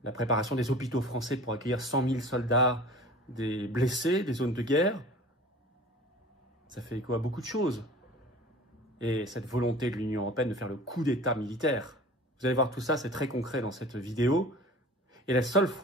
la préparation des hôpitaux français pour accueillir 100 000 soldats, des blessés, des zones de guerre. Ça fait écho à beaucoup de choses. Et cette volonté de l'Union européenne de faire le coup d'État militaire. Vous allez voir tout ça, c'est très concret dans cette vidéo. Et la seule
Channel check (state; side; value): normal; both; correlation 0.41